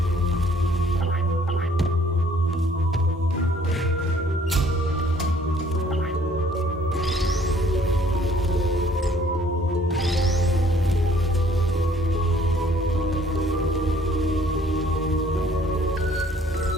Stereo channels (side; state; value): both; normal; correlation 0.60